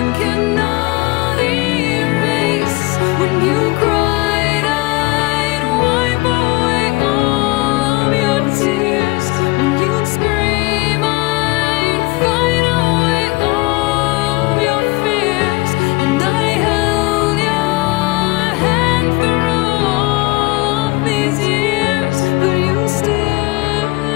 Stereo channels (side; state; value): right; quieter; 23.2 dB